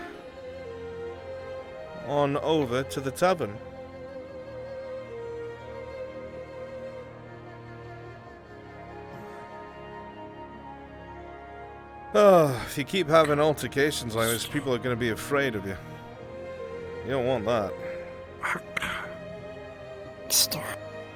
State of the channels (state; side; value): identical; both; correlation 1.00